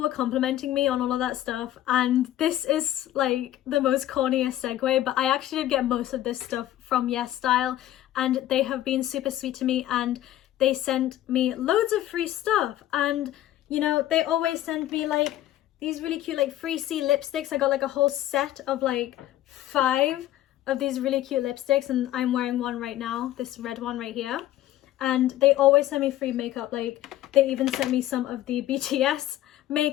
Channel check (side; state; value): right; quieter; 13.6 dB